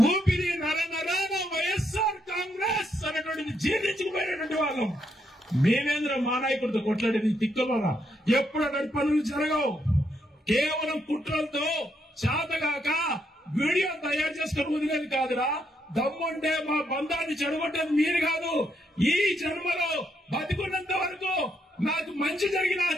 ఊపిరి నరనరాన వైఎస్ఆర్ కాంగ్రెస్ అనేటువంటిది జీర్ణించుకుపోయినటువంటి వాళ్ళం. మేమేంద్ర మా నాయకుడితో కొట్లాడేది తిక్కలోనా? ఎప్పుడు అటువంటి పనులు జరగవు. కేవలం కుట్రలతో చేతగాక వీడియో తయారు చేసుకుని వదిలేది కాదురా. దమ్ముంటే మా బంధాన్ని చెడగొట్టేది మీరు కాదు. ఈ జన్మలో బతికున్నంత వరకు నాకు మంచి జరిగినా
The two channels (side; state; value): both; normal; correlation 0.77